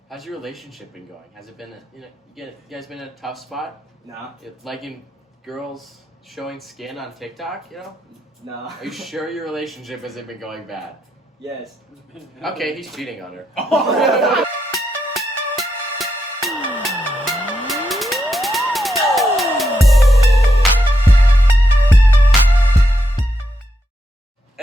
How's your relationship been going? Has it been you guys been in a tough spot? No. Liking girls showing skin on TikTok, No. Are you sure your relationship hasn't been going bad? Yes. Okay, he's cheating on her.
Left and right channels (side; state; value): both; normal; correlation 0.82